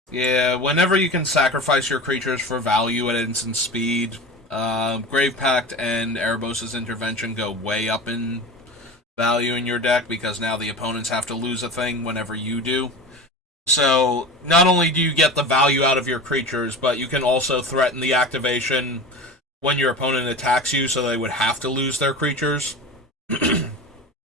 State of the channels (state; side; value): normal; both; correlation 0.31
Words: Yeah, whenever you can sacrifice your creatures for value at instant speed, Grave Pact and Erebos' Intervention go way up in value in your deck because now the opponents have to lose a thing whenever you do. So, not only do you get the value out of your creatures, but you can also threaten the activation when your opponent attacks you, so they would have to lose their creatures.